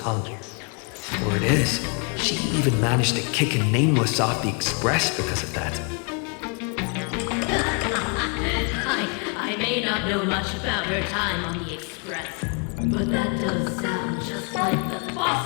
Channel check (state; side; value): quieter; right; 35.2 dB